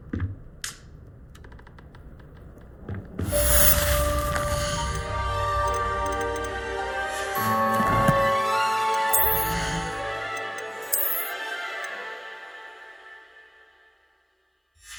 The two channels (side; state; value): both; identical; correlation 1.00